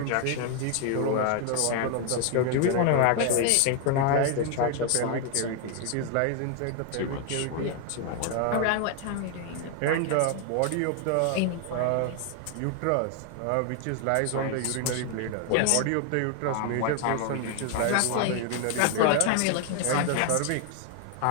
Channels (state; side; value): different; both; correlation 0.00